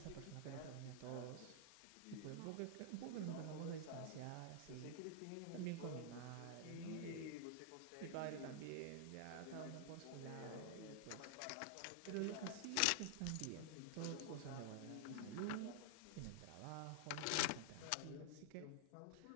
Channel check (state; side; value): different; both; correlation -0.01